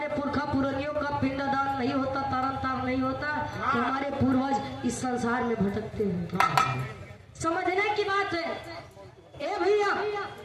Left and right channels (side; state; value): both; identical; correlation 1.00